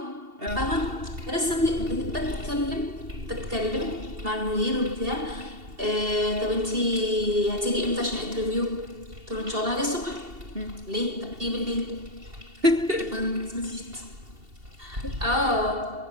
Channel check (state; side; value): late; left; 2.7 ms